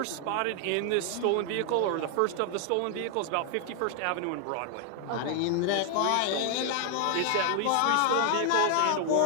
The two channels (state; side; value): different; both; correlation 0.00